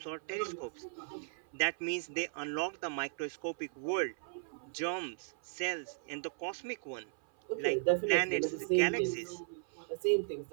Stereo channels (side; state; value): left; silent; 53 dB below the other